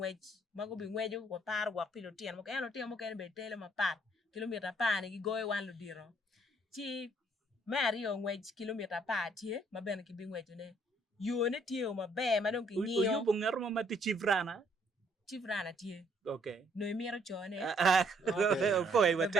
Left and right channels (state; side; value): normal; both; correlation 0.66